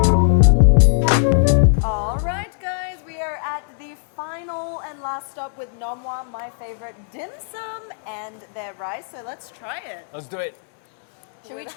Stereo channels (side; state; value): right; silent; digital silence